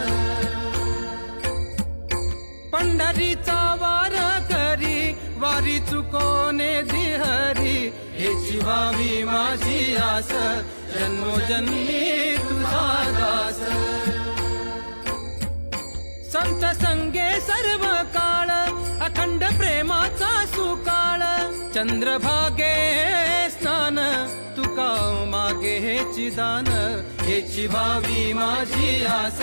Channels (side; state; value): both; inverted; correlation -1.00